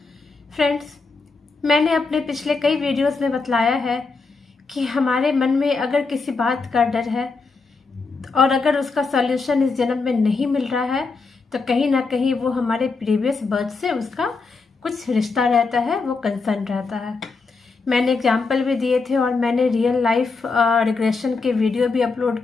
फ्रेंड्स, मैंने अपने पिछले कई वीडियोस में बतलाया है कि हमारे मन में अगर किसी बात का डर है और अगर उसका सॉल्यूशन इस जन्म में नहीं मिल रहा है तो कहीं ना कहीं वो हमारे प्रीवियस बर्थ से उसका कुछ रिश्ता रहता है, वो कंसर्न रहता है। मैंने एग्जाम्पल भी दिए थे और मैंने रियल लाइफ रिग्रेशन के वीडियो भी अपलोड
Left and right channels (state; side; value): quieter; right; 4.2 dB